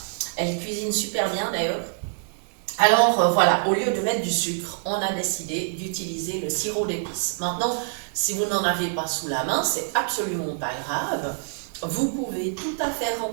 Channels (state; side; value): silent; left; 59 dB below the other